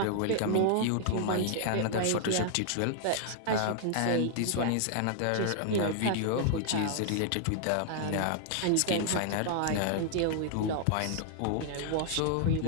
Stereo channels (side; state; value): both; different; correlation 0.00